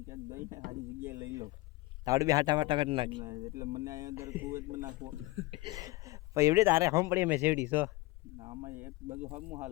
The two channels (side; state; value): right; quieter; 20.3 dB